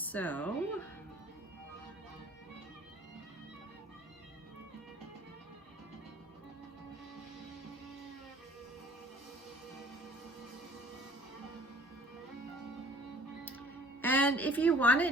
And if you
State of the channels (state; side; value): normal; both; correlation 0.51